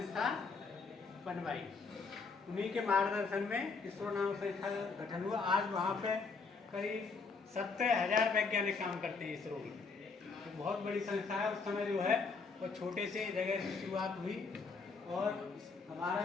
बनवाई। उन्हीं के मार्गदर्शन में इसरो नामक संस्था का गठन हुआ। आज वहाँ पे करीब 70,000 वैज्ञानिक काम करते हैं इसरो की। तो बहुत बड़ी संस्था है। उस समय जो है वो छोटे से जगह से शुरुआत हुई और हमारा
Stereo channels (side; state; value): right; quieter; 4.6 dB